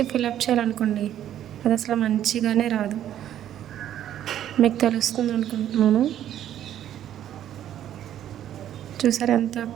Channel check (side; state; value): left; quieter; 11.2 dB